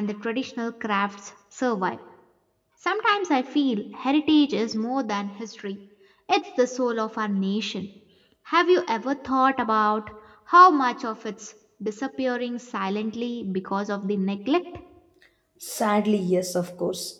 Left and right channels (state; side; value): identical; both; correlation 1.00